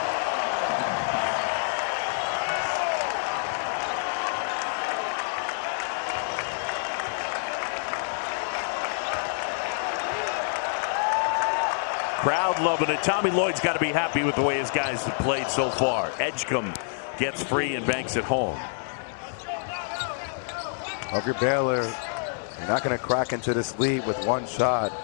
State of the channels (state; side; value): silent; right; digital silence